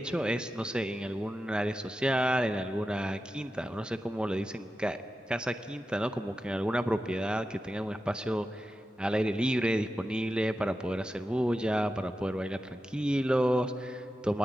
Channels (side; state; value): both; normal; correlation 0.91